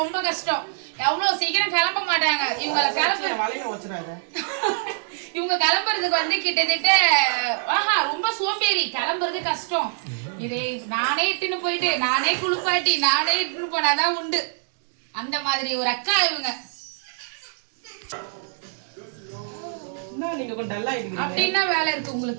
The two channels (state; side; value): silent; left; digital silence